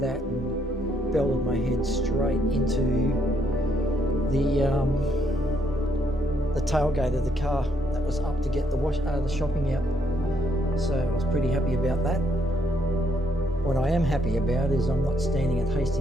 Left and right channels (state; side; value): normal; both; correlation 0.73